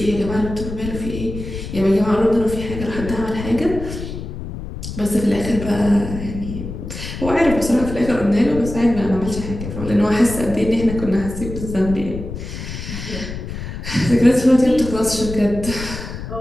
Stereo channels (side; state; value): left; noise; rumble, 8 dB below the sound